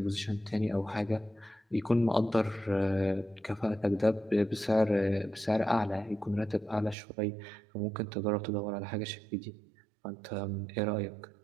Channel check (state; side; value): drops out; left; at 7.0 s